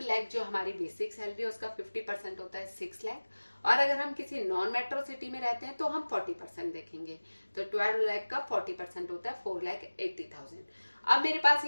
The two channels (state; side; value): inverted; both; correlation -1.00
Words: लाख जो हमारी बेसिक सैलरी है उसका 50% होता है 6 लाख। और अगर हम किसी नॉन मेट्रो सिटी में रहते हैं तो हम 40% देखेंगे। तो 12 लाख का 40% होता है 4,80,000। अब मेरे पास